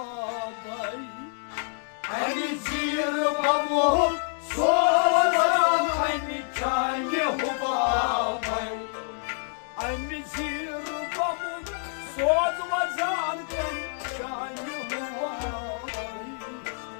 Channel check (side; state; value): right; silent; 60 dB below the other